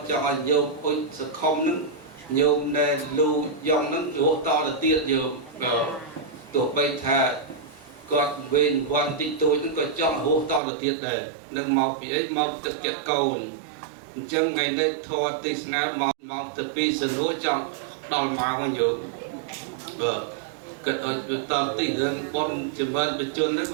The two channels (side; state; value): left; drops out; at 10.6 s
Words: ចង់ឲ្យញោមអុជសខុមនឹងញោមដែលលូយ៉ងនឹងរស់តទៅទៀតញោមទោះបីថាគាត់វេនវ័នតិចតួចហ្នឹងក៏ចង់រស់តទៅទៀតដែរនឹងមកពីអីមកទឹកចិត្តកូនអញ្ចឹងថ្ងៃនេះធម៌ទេសនាមកទៅពីសនុចង់ដល់មកវិញយោបាទគិតឲ្យតទីរឿងបនចម្រើនបញ្ជននេះ